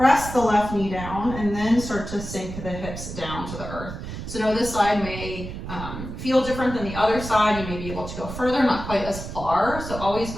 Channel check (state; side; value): noise; right; rumble, 9 dB below the sound